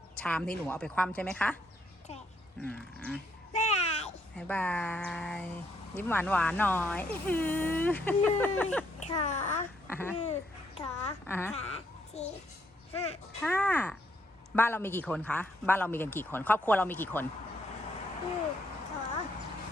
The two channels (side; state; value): both; normal; correlation 0.73